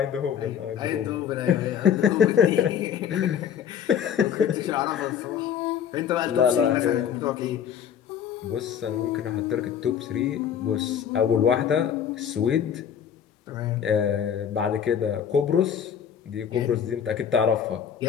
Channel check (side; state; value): right; quieter; 8.6 dB